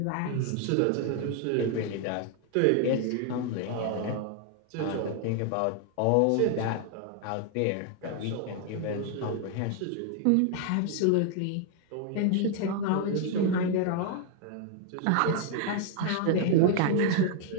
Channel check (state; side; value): different; both; correlation 0.00